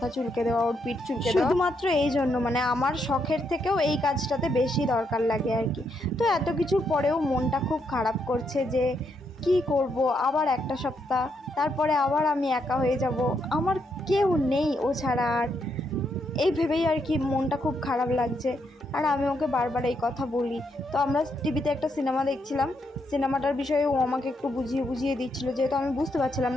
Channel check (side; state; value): both; normal; correlation 0.78